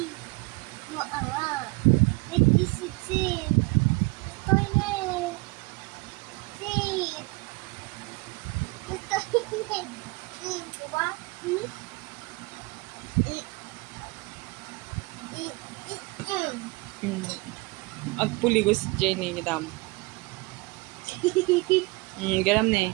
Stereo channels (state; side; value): quieter; left; 26.0 dB